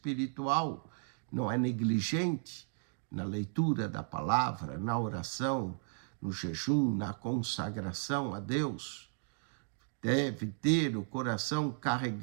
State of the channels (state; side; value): silent; left; digital silence